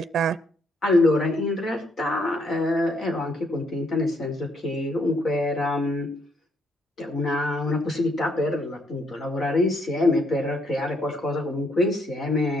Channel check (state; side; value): normal; both; correlation 0.72